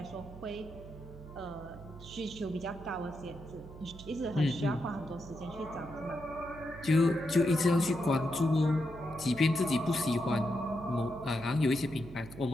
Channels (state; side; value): noise; right; hum, 15 dB below the sound